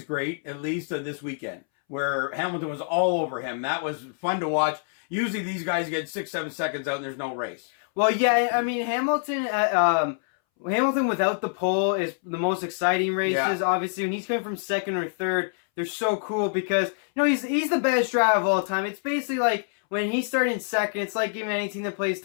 great, at least this weekend, where Hamilton was all over him. That was fun to watch. Usually these guys get 6-7 seconds out and there's no race. Well, yeah, I mean, Hamilton without the pole is the most exciting races. Yeah. Obviously, when he's coming from second or third, they're so cool because he's the best driver of all time. It's basically like when he started in second, it's like giving any team that plays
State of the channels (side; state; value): right; silent; 61 dB below the other